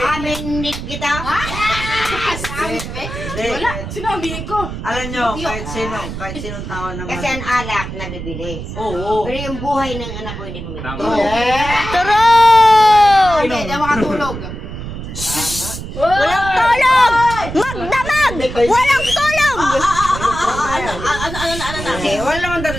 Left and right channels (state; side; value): noise; right; rumble, 8 dB below the sound